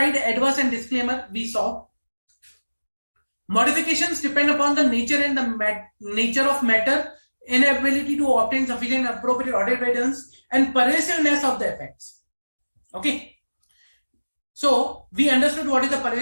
adverse and disclaimer we saw. Modifications depend upon the nature and the nature of matter, inability to obtain sufficient appropriate audit evidence, and pervasiveness of the effects. Okay. So we understood what is the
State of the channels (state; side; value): inverted; both; correlation -1.00